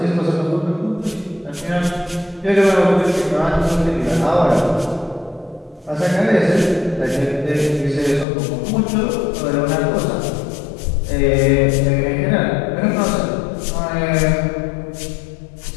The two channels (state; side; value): drops out; right; at 8.2 s